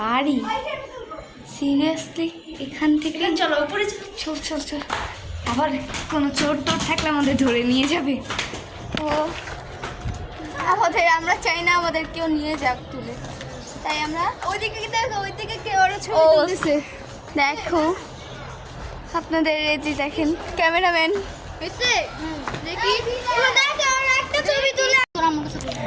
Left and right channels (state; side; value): identical; both; correlation 1.00